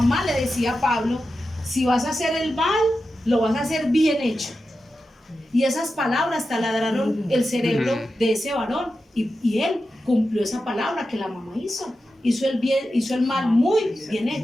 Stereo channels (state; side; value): normal; both; correlation 0.91